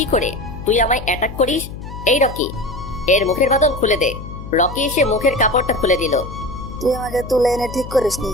করে তুই আমায় অ্যাটাক করিস? এই রকি, এর মুখের বাঁধন খুলে দে। রকি এসে মুখের কাপড়টা খুলে দিল। তুই আমাকে তুলে এনে ঠিক করিসনি,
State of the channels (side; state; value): left; noise; hum, 11 dB below the sound